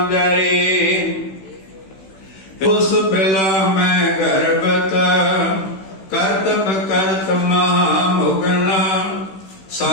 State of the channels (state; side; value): late; right; 16 ms